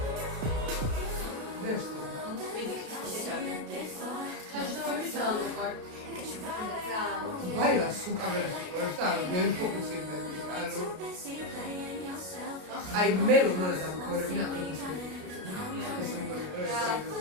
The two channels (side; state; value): left; late; 33 ms